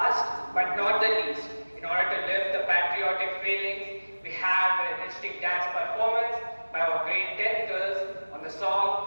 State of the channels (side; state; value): both; inverted; correlation -1.00